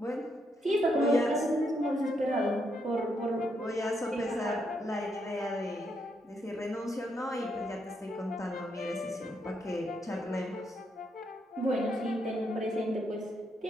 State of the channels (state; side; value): normal; both; correlation 0.78